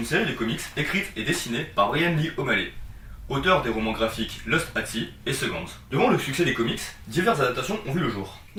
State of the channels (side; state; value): both; identical; correlation 1.00